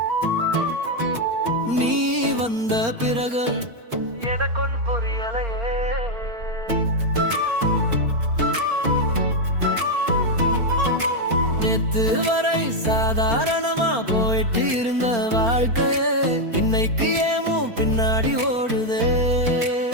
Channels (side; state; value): left; late; 4.4 ms